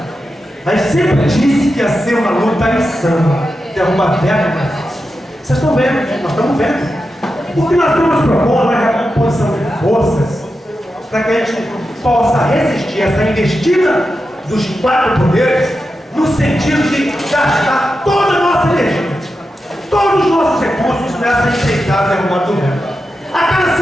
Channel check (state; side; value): normal; both; correlation 0.89